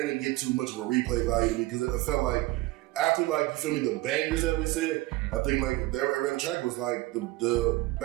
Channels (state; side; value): quieter; left; 19.3 dB